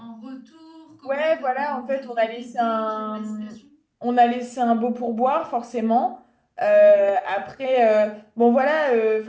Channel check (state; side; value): identical; both; correlation 1.00